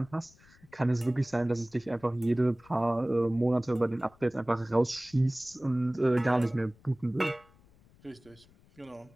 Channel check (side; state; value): left; noise; rumble, 28 dB below the sound